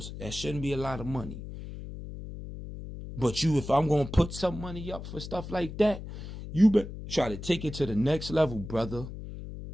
That shouldn't be a lot of money. But if I'm going to put some money up for stuff like that, you better try to take it to the next level, brother.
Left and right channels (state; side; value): noise; left; hum, 10 dB below the sound